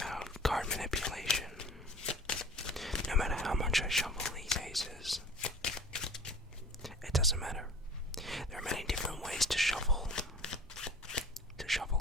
card manipulation. No matter how much I shuffle these aces, it doesn't matter. There are many different ways to shuffle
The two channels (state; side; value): normal; both; correlation 0.43